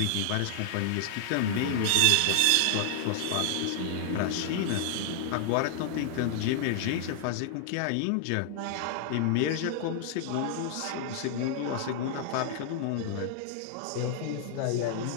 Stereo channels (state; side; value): different; both; correlation -0.01